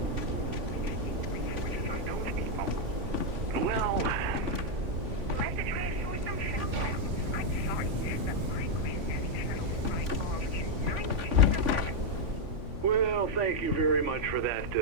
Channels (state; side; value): late; left; 3.5 ms